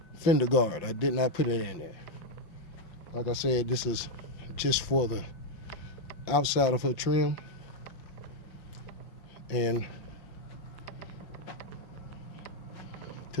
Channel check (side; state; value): right; late; 5.8 ms